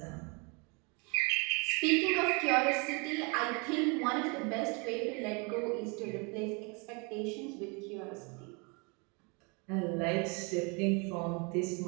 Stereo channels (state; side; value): quieter; left; 31.7 dB